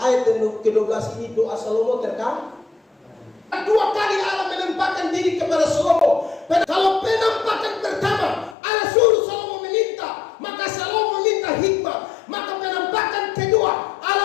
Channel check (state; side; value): drops out; right; at 8.6 s